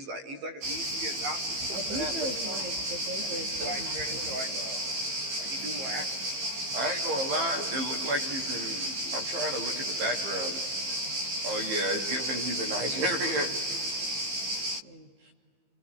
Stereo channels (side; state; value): left; late; 15 ms